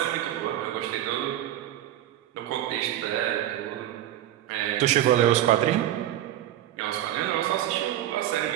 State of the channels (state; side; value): quieter; left; 12.8 dB